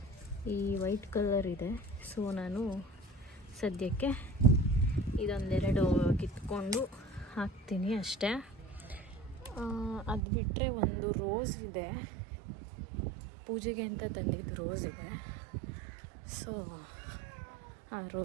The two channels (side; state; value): left; drops out; at 10.2 s